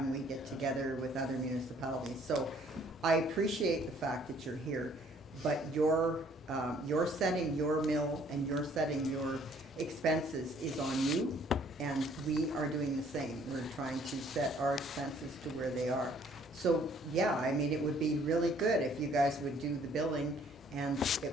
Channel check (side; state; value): both; normal; correlation 0.60